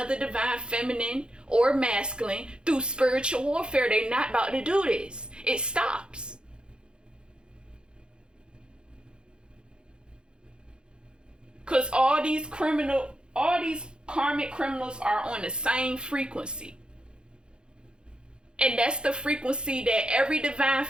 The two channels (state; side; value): late; left; 0.051 ms